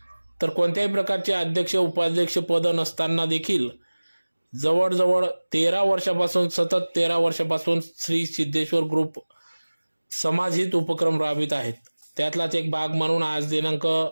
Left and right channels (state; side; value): inverted; both; correlation -1.00